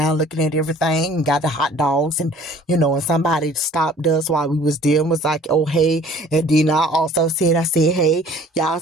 looking at everything and got the hot dogs, and and somebody stopped us while we was there and was like, oh hey. And then I said, hey, y'all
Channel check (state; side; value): normal; both; correlation 0.52